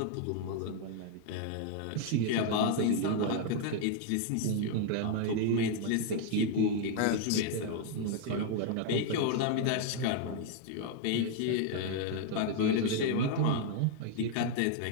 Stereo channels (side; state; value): both; different; correlation 0.00